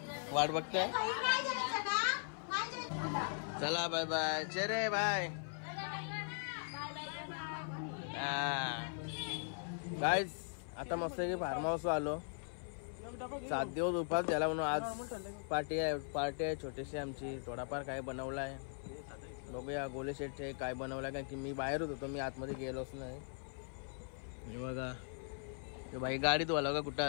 वाट बघते. चला बाय बाय. चेरे बाय. गाईज आता मस्त की फार्म हाऊस आलो. 7 दिवस उपास झाला म्हणून आज पार्टी आहे छोटीशी आमची. थोडाफार काय बनवला आहे बघूया. गोले शेटचे काय बनवलाय कारण की मी बाहेरच होतो. मी आतमध्ये गेलोच नाही. हे बघा ते भाई गाडीत वाला का कुठं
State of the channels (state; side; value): silent; right; 51 dB below the other